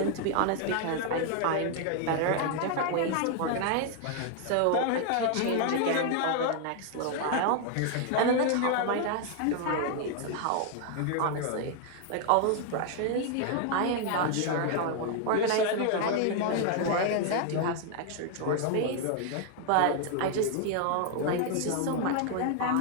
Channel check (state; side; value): different; both; correlation 0.00